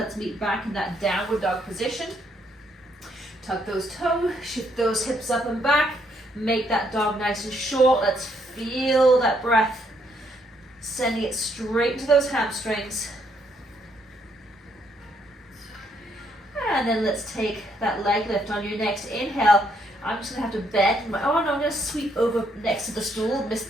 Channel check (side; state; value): both; normal; correlation 0.72